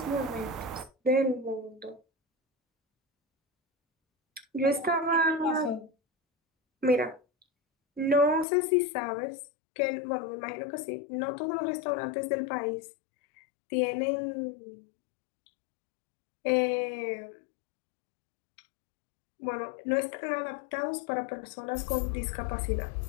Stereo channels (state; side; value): drops out; right; at 8.5 s